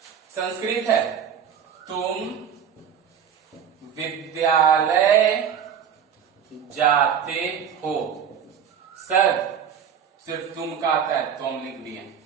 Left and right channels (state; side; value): quieter; left; 8.0 dB